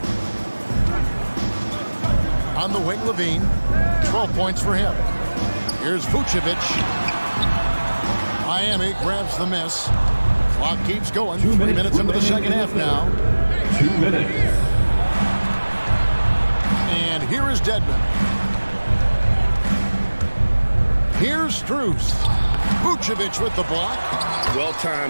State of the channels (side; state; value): both; inverted; correlation -1.00